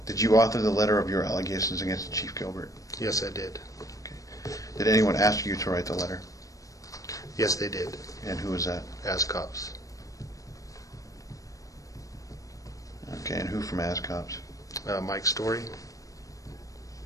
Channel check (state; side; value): late; right; 0.16 ms